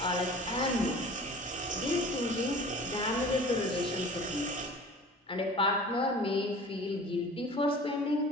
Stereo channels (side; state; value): both; normal; correlation 0.43